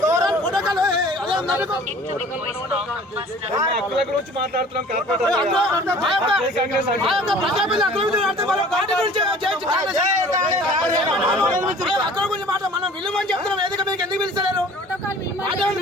ప్రోటోకాల్ హక్కుల గురించి మాట్లాడుతున్నాం. మనం విలువని చెప్తున్నాం. వేదిక మీకు ఎందుకు పిలుస్తలేరు?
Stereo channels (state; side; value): normal; both; correlation 0.48